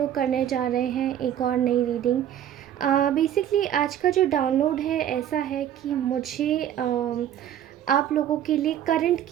करने जा रहे हैं एक और नई रीडिंग. बेसिकली आज का जो डाउनलोड है ऐसा है कि मुझे आप लोगों के लिए करंट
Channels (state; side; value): quieter; left; 10.7 dB